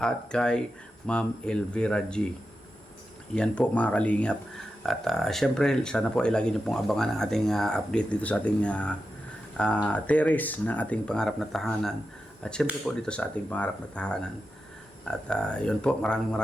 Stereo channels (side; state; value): both; normal; correlation 0.90